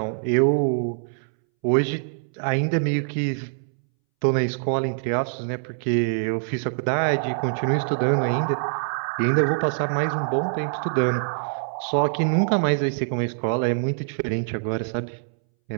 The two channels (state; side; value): silent; left; 62 dB below the other